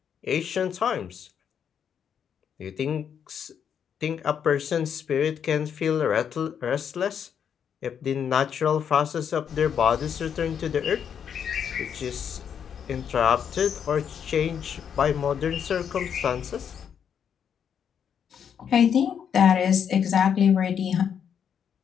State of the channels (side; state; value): right; quieter; 8.0 dB